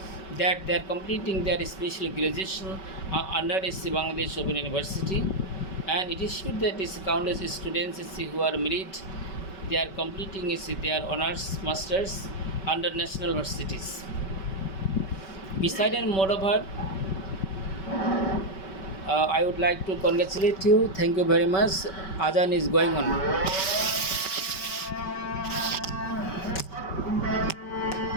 that they are completing their special graduation under Bangladesh Open University, and it is true that countless students who are married, they are completing their honors masters under national universities. Besides and moreover, I would like to congratulate you. Thank you very much. Azan is going on.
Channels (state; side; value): late; right; 5.2 ms